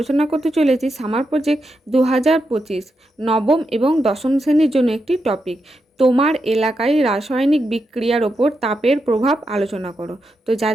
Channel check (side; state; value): both; normal; correlation 0.85